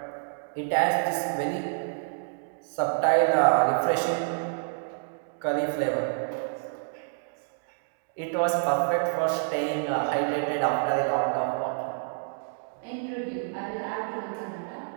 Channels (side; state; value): left; silent; digital silence